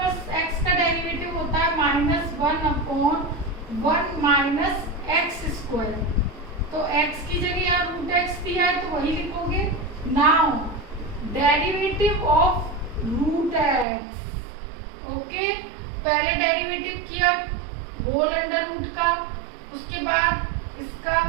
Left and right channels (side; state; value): left; drops out; at 13.9 s